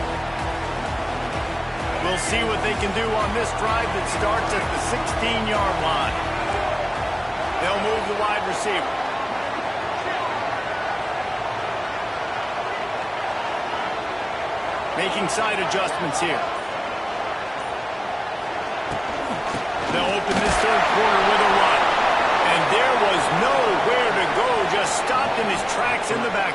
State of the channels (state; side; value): identical; both; correlation 1.00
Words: We'll see what they can do on this drive that starts at the 16-yard line. They'll move the wide receiver. Making side adjustments here. They'll open this third quarter with a run. And there was nowhere to go, just stopped in his tracks in the